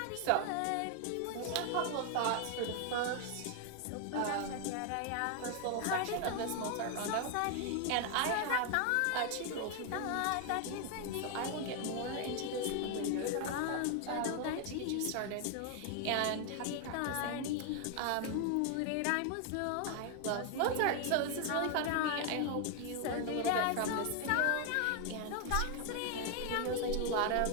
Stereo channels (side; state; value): both; different; correlation 0.00